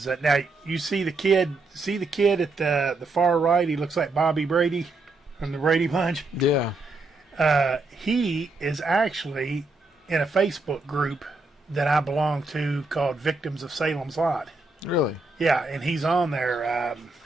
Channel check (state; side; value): quieter; left; 3.3 dB